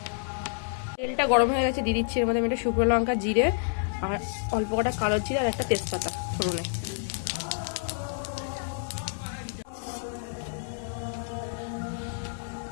তেলটা গরম হয়ে গেছে, দিয়ে দিচ্ছি এর মধ্যে আমি একটা শুকনো লঙ্কা, জিরে আর অল্প কটা কালো জিরে আর একটা তেজপাতা ফোড়নে।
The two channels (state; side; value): silent; right; 59 dB below the other